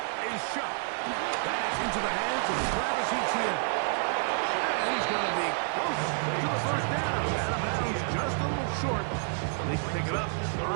is shot. That's into the hands of Travis Etienne. And he's going to be close to the first down. Out of bounds, just a little short. They can pick it up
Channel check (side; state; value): left; silent; 58 dB below the other